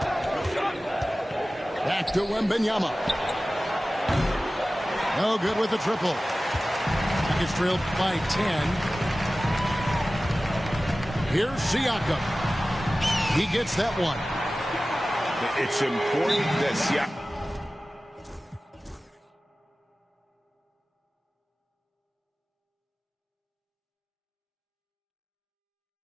Back to Wembanyama. No good with the triple. It's trailed by 10. Here's Siakam. He gets that one. It's important that Siakam...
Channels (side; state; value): both; normal; correlation 0.96